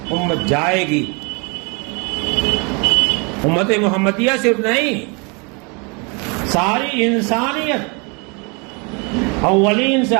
امت جائے گی. امت محمدیہ صرف نہیں، ساری انسانیت اولین سے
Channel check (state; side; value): quieter; left; 31.9 dB